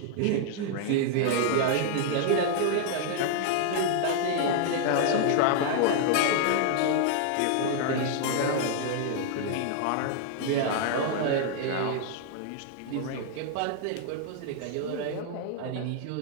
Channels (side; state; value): both; different; correlation -0.01